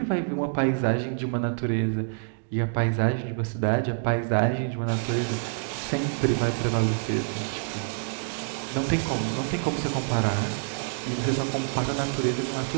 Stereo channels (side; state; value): left; silent; digital silence